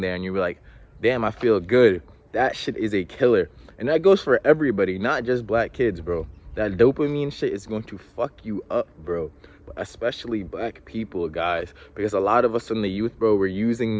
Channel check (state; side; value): identical; both; correlation 1.00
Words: and you're like, damn, I feel good. That shit is a killer. And that goes for everybody, not just black kids, bro. That dopamine shit is going to fuck you up, bro. Especially black people, guys, because a lot of us in the youth, bro, we're